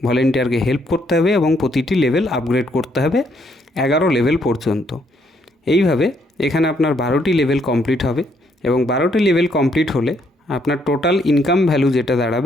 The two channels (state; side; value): normal; both; correlation 0.71